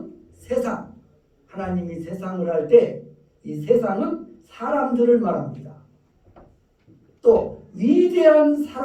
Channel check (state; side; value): identical; both; correlation 1.00